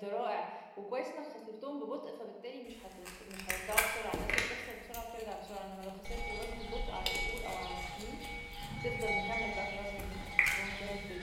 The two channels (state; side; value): identical; both; correlation 1.00